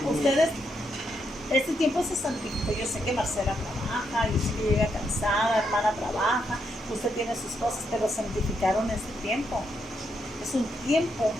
este tiempo se santifica. Yo sé que Marcela trabaja, yo sé que llega cansada, hermana trabaja, usted tiene sus cosas, pero santificaron este tiempo. Es un tiempo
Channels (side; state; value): both; normal; correlation 0.79